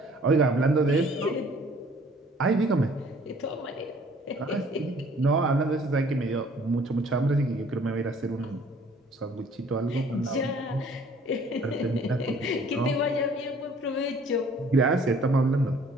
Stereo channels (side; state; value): both; normal; correlation 0.56